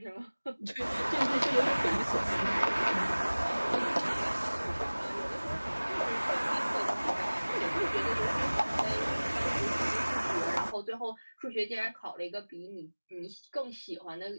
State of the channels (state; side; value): inverted; both; correlation -1.00